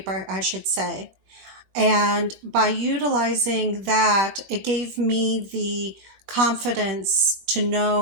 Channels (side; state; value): left; late; 22 ms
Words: I should say. And by utilizing that, it gave me the confidence to